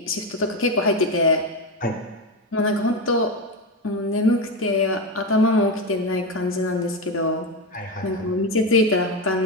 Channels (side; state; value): both; normal; correlation 0.14